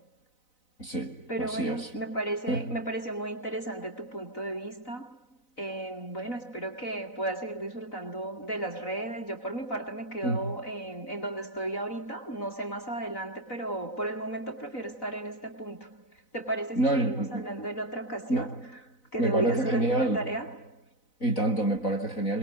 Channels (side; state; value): right; late; 4.0 ms